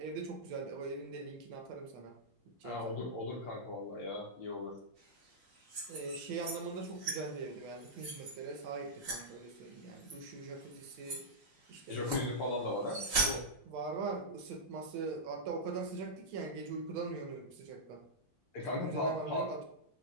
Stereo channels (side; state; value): both; normal; correlation -0.10